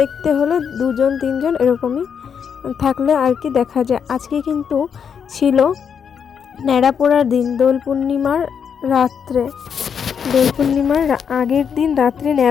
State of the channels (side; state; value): right; quieter; 7.2 dB